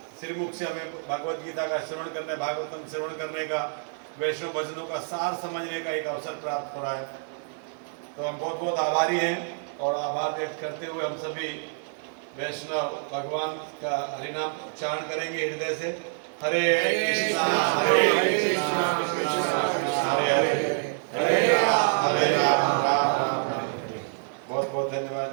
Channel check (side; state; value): left; silent; digital silence